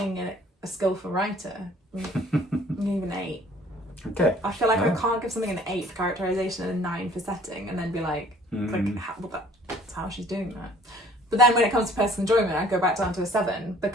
a skillful writer? Even 8. Okay. I feel like I can't give something an 8 for characterization and a 9 for setting, and then be like, that's how she's doing that. But then when it comes to personal enjoyment, I go back down to a 7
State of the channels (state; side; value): normal; both; correlation 0.54